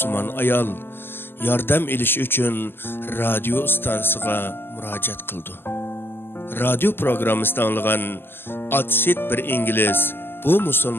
ayol yordam elish uchun radio stansiyasiga murojaat qildi. Radio programmasida anlagan Atsit bir İngiliz bu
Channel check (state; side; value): late; right; 0.10 ms